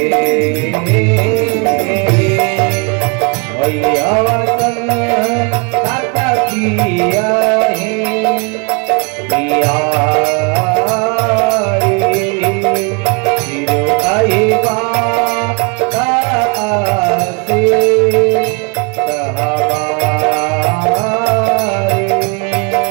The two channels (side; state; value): left; quieter; 32.2 dB